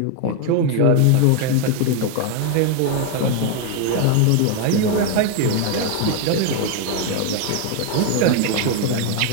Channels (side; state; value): both; different; correlation 0.01